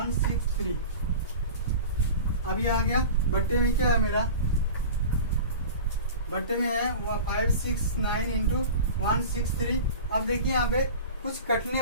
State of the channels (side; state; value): both; inverted; correlation -0.35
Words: अब ये आ गया बट्टे में, क्या है मेरा बट्टे में है 569 इंटू 163। अब देखिए यहाँ पे कुछ कटने